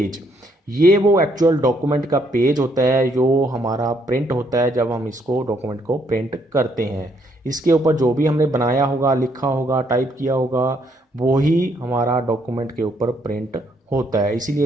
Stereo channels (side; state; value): both; normal; correlation 0.71